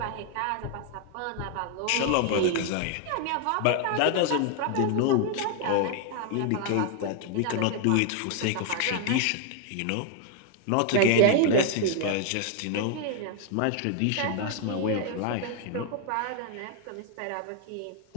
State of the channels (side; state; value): both; different; correlation 0.00